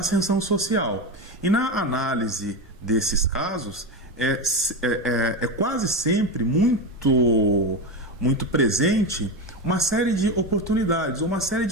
social. E na análise desses casos, é quase sempre muito presente uma série de oportunidades, uma série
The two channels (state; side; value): normal; both; correlation 0.17